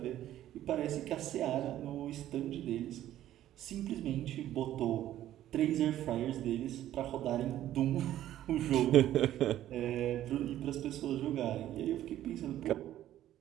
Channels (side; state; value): left; quieter; 12.8 dB